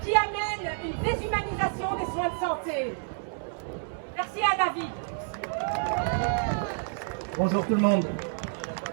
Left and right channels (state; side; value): silent; left; 59 dB below the other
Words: amène une déshumanisation des soins de santé. Merci à David. Bonjour tout le monde.